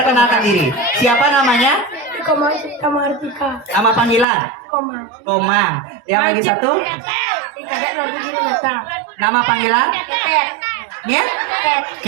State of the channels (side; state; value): left; drops out; at 4.2 s